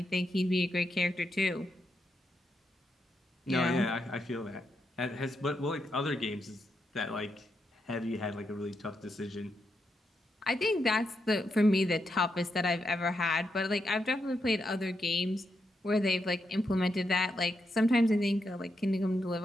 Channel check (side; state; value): both; normal; correlation 0.83